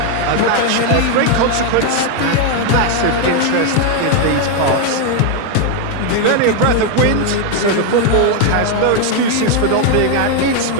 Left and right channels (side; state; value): both; different; correlation 0.01